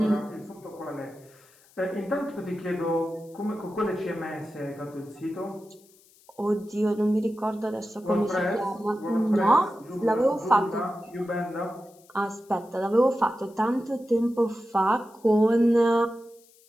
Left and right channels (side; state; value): left; noise; hiss, 29 dB below the sound